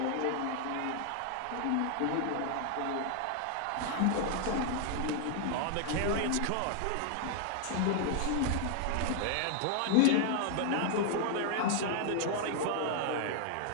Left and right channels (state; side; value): different; both; correlation 0.00